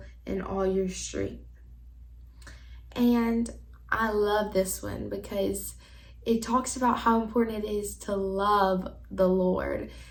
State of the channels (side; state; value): both; identical; correlation 1.00